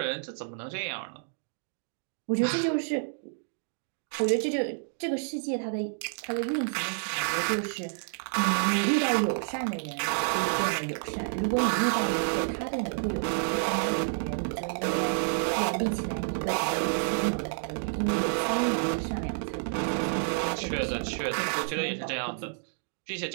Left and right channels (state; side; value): silent; left; digital silence